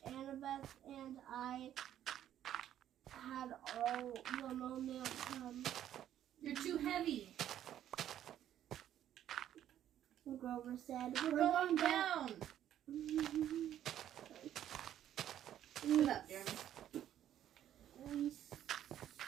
Annabeth and I had all the momentum. You're too heavy. Grover said, We're going down. Sit up, Jeremy.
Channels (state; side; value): quieter; left; 11.2 dB